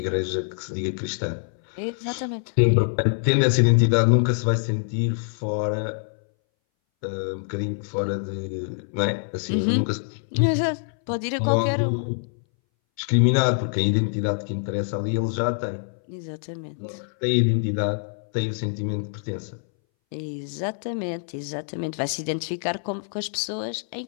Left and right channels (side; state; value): right; silent; 61 dB below the other